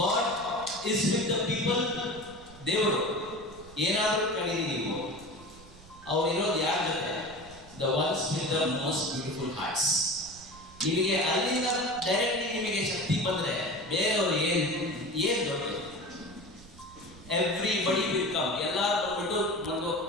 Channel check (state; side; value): noise; right; rumble, 21 dB below the sound